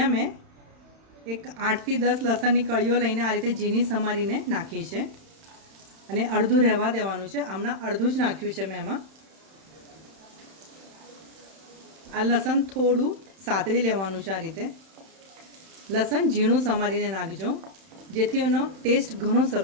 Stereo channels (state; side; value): late; left; 31 ms